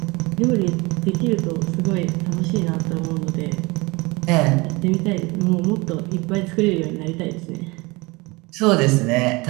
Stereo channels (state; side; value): quieter; left; 24.8 dB